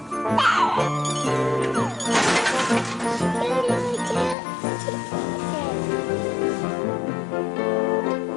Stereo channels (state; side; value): drops out; right; at 4.4 s